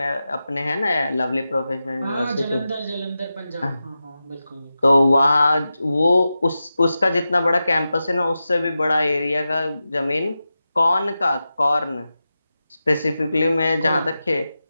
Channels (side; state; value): both; inverted; correlation -0.92